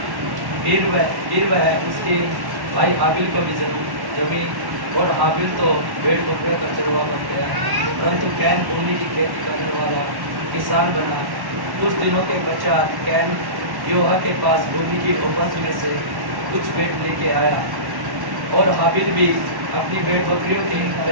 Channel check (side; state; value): left; late; 1.1 ms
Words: फिर वह उसके भाई हाबिल को भी जमी और हाबिल तो भेड़ बकरियों का चरवा बन गया, परंतु कैन भूमि की खेती करने वाला किसान बना। कुछ दिनों के पश्चात कैन यहोवा के पास भूमि की उपज में से कुछ भेड़ लेके आया और हाबिल भी अपनी भेड़ बकरियों की